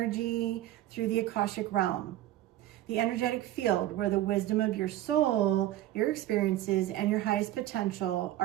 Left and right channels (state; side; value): quieter; left; 14.1 dB